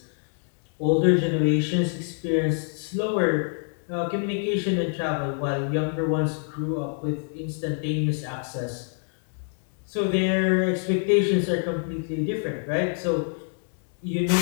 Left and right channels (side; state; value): right; silent; 61 dB below the other